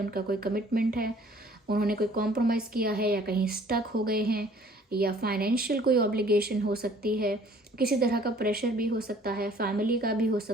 कोई कमिटमेंट है, उन्होंने कोई कॉम्प्रोमाइज़ किया है या कहीं स्टक हो गए हैं, या फाइनेंशियल कोई ऑब्लिगेशन हो सकती है, किसी तरह का प्रेशर भी हो सकता है, फैमिली का भी हो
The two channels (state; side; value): normal; both; correlation 0.55